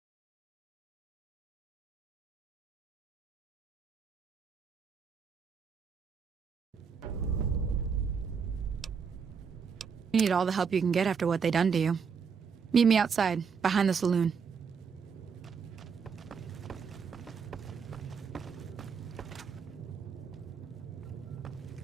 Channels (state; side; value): quieter; left; 6.1 dB